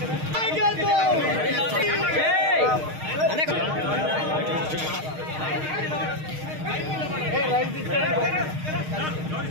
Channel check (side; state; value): left; late; 6.5 ms